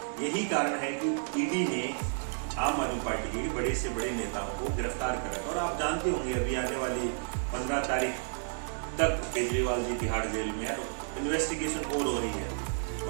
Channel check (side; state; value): left; silent; 57 dB below the other